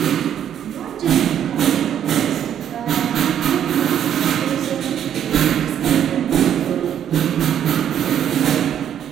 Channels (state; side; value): quieter; left; 9.7 dB